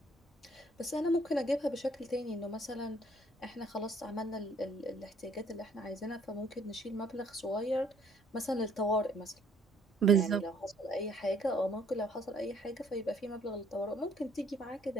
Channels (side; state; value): both; normal; correlation 0.62